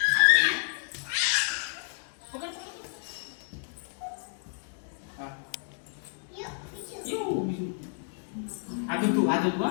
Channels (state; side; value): silent; right; 58 dB below the other